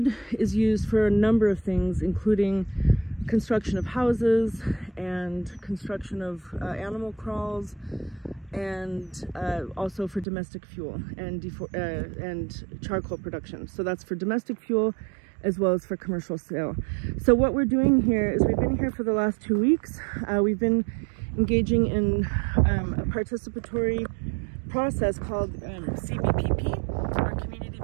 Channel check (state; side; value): drops out; left; at 10.2 s